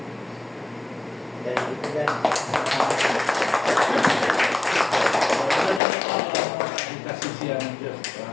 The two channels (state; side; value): drops out; right; at 5.8 s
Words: Dahil ito yan. Kasisiyan ng Diyos